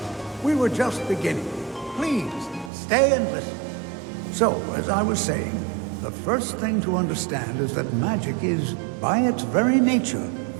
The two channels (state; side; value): drops out; left; at 2.7 s